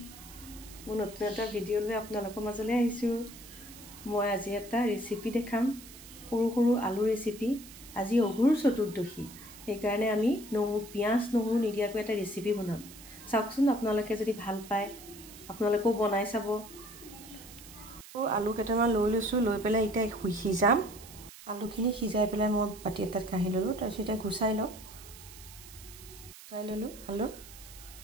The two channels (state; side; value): noise; right; hiss, 17 dB below the sound